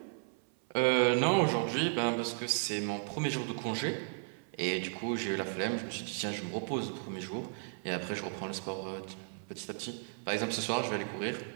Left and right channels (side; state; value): left; silent; 55 dB below the other